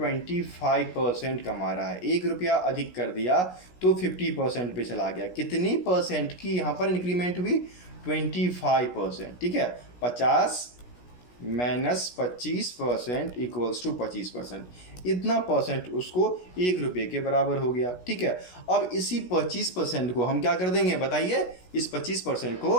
कमा रहा है, ₹1 अधिक कर दिया तो 50% पे चला गया। कितनी परसेंट की यहाँ पर इंक्रीमेंट हुई? 25%। ठीक है, 50 माइनस 25% इक्वल्स टू 25%, इतना परसेंट उसको ₹1 के बराबर हो गया। ठीक है, अब इसी 25% को हम क्या कर देंगे बताइए? इस 25%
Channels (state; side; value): late; right; 16 ms